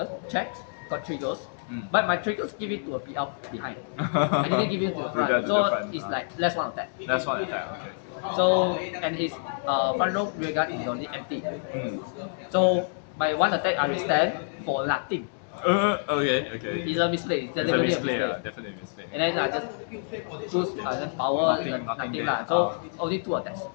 checks, got triggers, but my triggers give it to a PL behind. I didn't give it to the front, To the so front, it's like less 1 attack. That's one attack. Okay. So and his front row rear guard is only empty. So my 1 attack I will stand for nothing. Okay. It's a misplay. It's It's a deliberately misplay. a misplay. Definitely a misplay. And then I just choose then power Nothing nothing there. lah. So only 2 attacks.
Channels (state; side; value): silent; right; digital silence